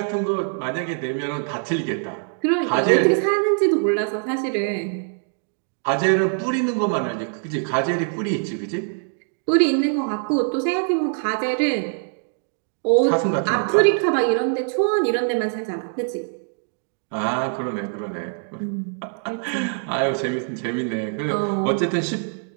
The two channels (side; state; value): left; silent; 61 dB below the other